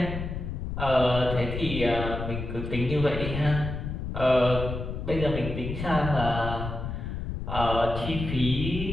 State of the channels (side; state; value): left; noise; rumble, 5 dB below the sound